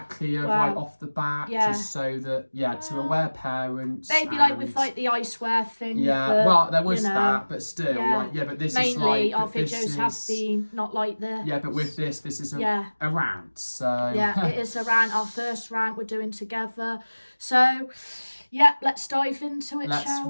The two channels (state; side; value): inverted; both; correlation -1.00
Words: clear right off the bat, just so that, to aware parents. Maybe like with like the iceware thing. Yeah, but, there was that, but still, but this mainly is like... Mainly our videos have been not like the... Yeah, but with this is a rant, so... Yeah, it is a rant, our first rant we're doing together. So... yeah, let's dive into it, shall